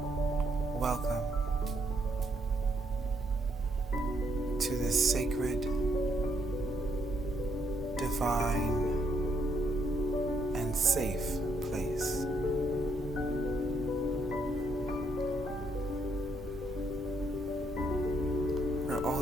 Welcome to this sacred, divine, and safe place. Where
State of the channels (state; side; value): normal; both; correlation 0.73